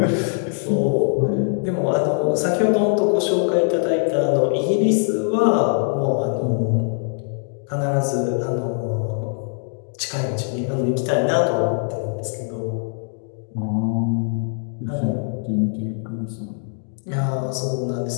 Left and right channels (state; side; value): silent; right; 64 dB below the other